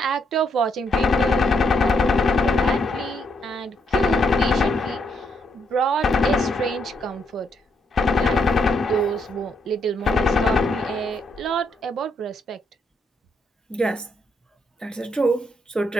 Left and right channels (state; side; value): normal; both; correlation 0.75